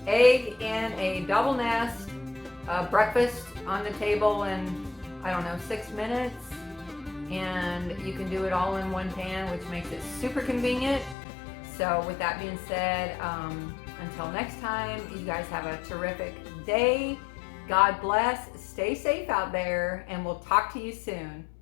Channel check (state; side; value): drops out; right; at 11.2 s